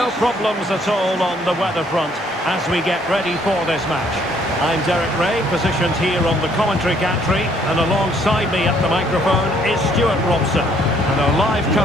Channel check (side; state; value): both; normal; correlation 0.65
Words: problems at all on the weather front as we get ready for this match. I'm Derek Ray, positioned here on the commentary gantry, and alongside me at the microphone is Stuart Robson. And our live